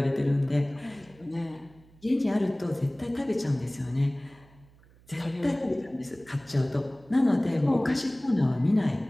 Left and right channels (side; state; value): right; noise; hum, 27 dB below the sound